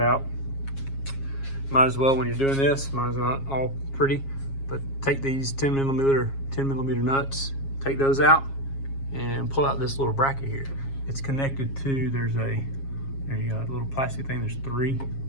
Might as well, when you're doing this, mine's not all pretty, but take these 10 millimeter nuts, take those out, and pull out this little bracket here. It's connected to, there you go, a little plastic thing, there's 3.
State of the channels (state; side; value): late; right; 7.3 ms